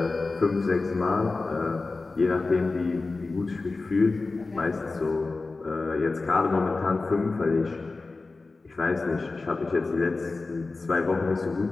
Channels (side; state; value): right; quieter; 3.7 dB